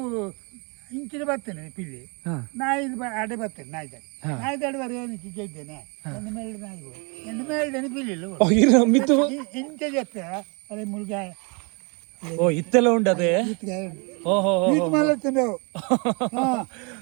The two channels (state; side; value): quieter; left; 32.7 dB